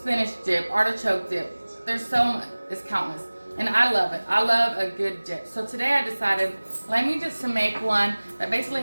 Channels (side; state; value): both; inverted; correlation -1.00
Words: dip, artichoke dip. There's so much, it's countless. And I love it. I love a good dip. So today I decided, let me just make one that basically